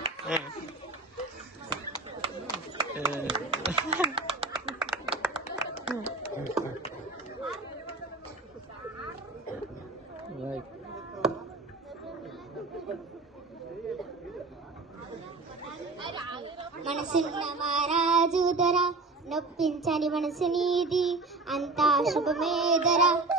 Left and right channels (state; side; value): quieter; left; 3.3 dB